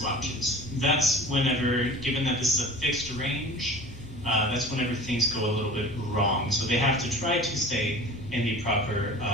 That's whenever, given that this is a fixed range, that's whenever things go a little bit wrong. So they have to try to stay in the proper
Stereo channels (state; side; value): normal; both; correlation 0.39